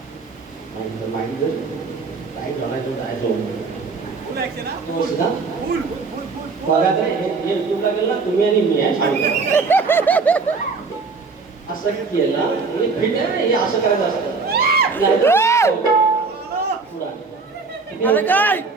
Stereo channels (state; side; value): quieter; left; 4.4 dB